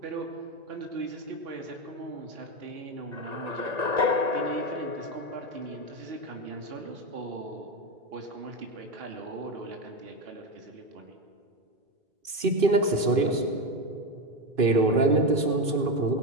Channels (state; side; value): late; left; 2.5 ms